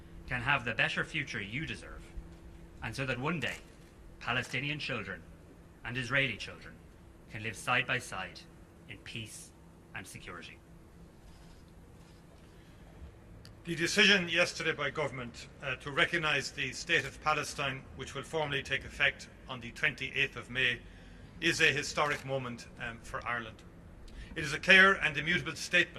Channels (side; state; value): both; identical; correlation 1.00